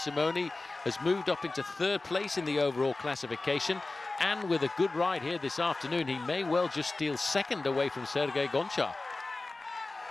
has moved up into 3rd place in the overall classification, and with a good ride here this afternoon, he may well just steal 2nd away from Sergei Gonchar.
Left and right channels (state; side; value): quieter; right; 3.3 dB